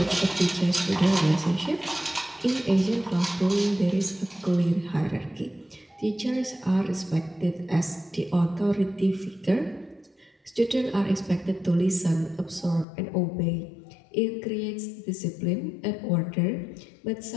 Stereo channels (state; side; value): drops out; right; at 12.9 s